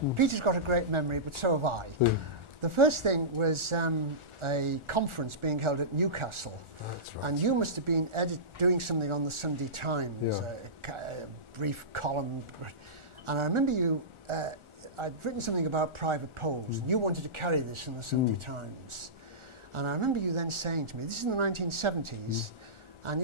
Peter's got a great memory, but so have I. The first thing was a conference being held at Newcastle. Right. And you must have been doing something on the Sunday Times, a brief column. And I remember you, I'd written something about private polls, and you wanted to carry this in the Sunday Times. And I remember you then saying to me, this is in the 1970s, and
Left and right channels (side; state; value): left; late; 1.4 ms